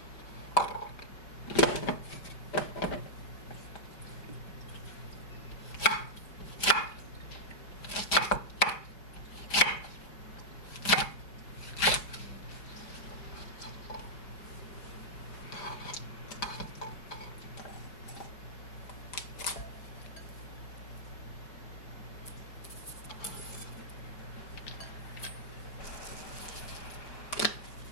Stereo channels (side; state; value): right; late; 5.1 ms